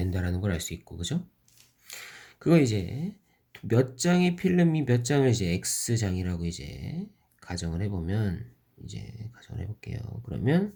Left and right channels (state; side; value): identical; both; correlation 1.00